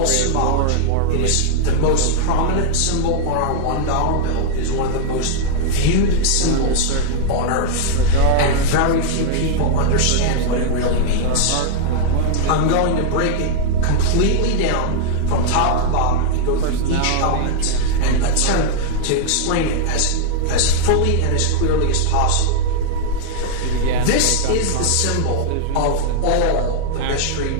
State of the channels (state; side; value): different; both; correlation 0.00